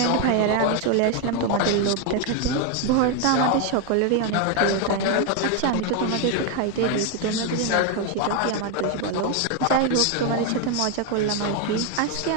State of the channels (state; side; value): different; both; correlation 0.01